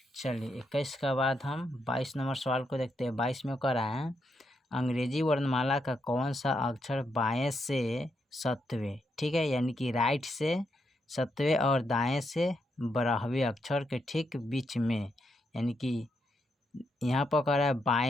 चलिए 21 का बाद हम 22 नंबर सवाल को देखते हैं। 22 में कह रहा है अंग्रेजी वर्णमाला का कौन सा अक्षर बाएं से सत्वें, ठीक है, यानी कि राइट से सत्वें और दाएं से 12वें अक्षर के ठीक बीच में, यानी कि यहाँ पर कह रहा है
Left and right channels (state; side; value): normal; both; correlation 0.81